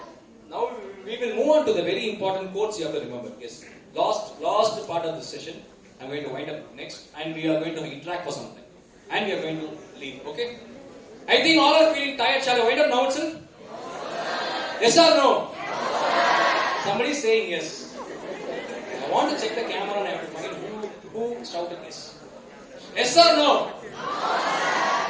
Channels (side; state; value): both; identical; correlation 1.00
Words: Now we will move on to the very important quotes you have to remember. Yes. Last part of this session. I'm going to wind up next and we are going to interact for something. And we are going to leave. Okay? I think all are feeling tired. Shall I wind up now itself? Yes or no? Somebody is saying yes. I want to check the camera and I have to find who shouted yes. Yes or no?